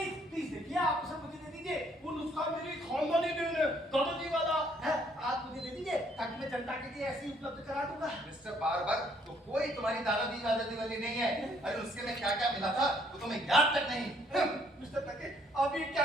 देखिए, आप उसे मुझे दे दीजिए। वो नुस्खा मेरी खानदानी देन है, दादाजी वाला है। आप मुझे दे दीजिए ताकि मैं जनता के लिए ऐसे ही उपलब्ध करा दूंगा। मिस्टर बारबर, तो कोई तुम्हारी दादाजी वाली नहीं है। अरे उसके में क्या क्या मिला था वो तुम्हें याद तक नहीं। मिस्टर प्लंकेट, आप ये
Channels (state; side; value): normal; both; correlation 0.66